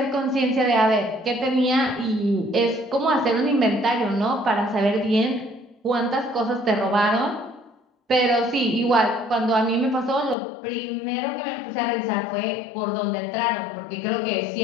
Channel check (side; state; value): right; drops out; at 10.4 s